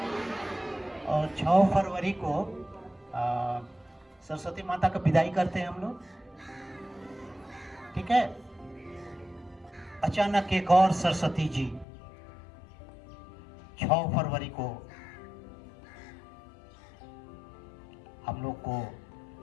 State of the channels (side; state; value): right; drops out; at 11.9 s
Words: और 6 फरवरी को सरस्वती माता का विदाई करते हैं हम लोग, ठीक है। अचानक एक और सरस्वती जी 6 फरवरी को हम लोग को